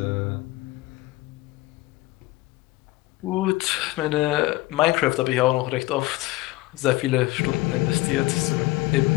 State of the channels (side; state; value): right; quieter; 19.2 dB